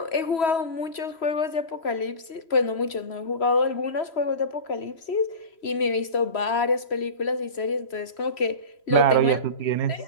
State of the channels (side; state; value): right; late; 3.1 ms